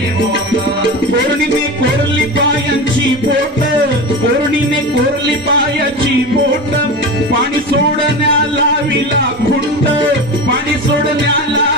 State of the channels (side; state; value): both; normal; correlation 0.26